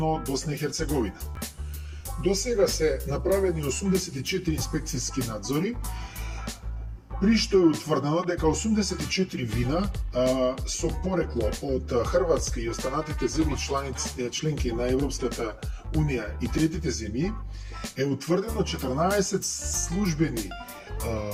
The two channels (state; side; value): identical; both; correlation 1.00